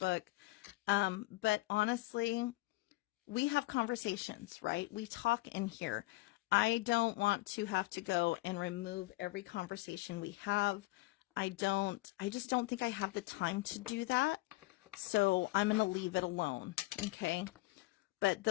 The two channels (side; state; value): right; quieter; 20.4 dB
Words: But honestly, we have conversations, right? We talk in here. I don't want to have to go and remove every conversation we have. I just don't think I have the time to do that. So I'm going to leave it alone. Okay. But